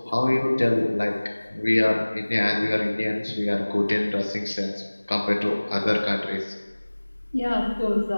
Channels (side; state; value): both; inverted; correlation -1.00